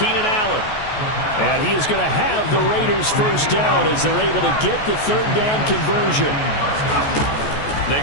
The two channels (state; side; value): late; right; 14 ms